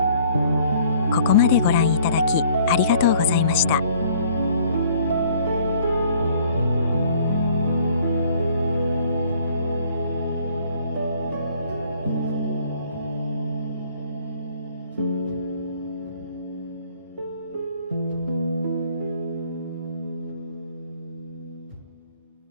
ここまでご覧いただきありがとうございました。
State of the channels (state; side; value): inverted; both; correlation -0.57